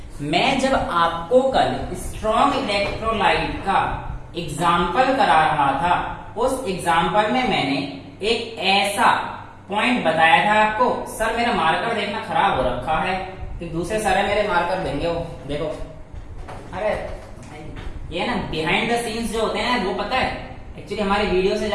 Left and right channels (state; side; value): identical; both; correlation 1.00